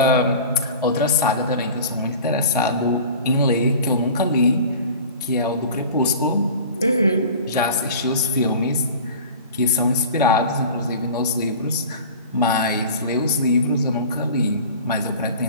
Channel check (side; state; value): both; inverted; correlation -0.39